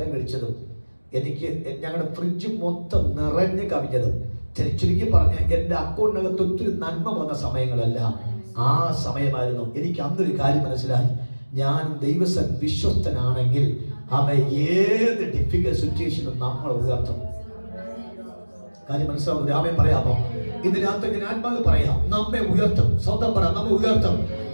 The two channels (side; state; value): both; inverted; correlation -1.00